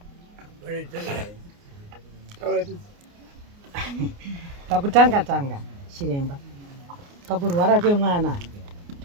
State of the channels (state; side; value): late; left; 29 ms